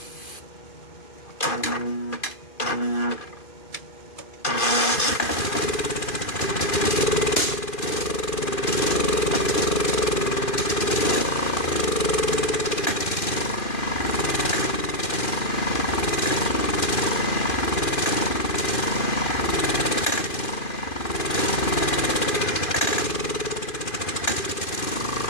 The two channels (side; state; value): right; late; 2.5 ms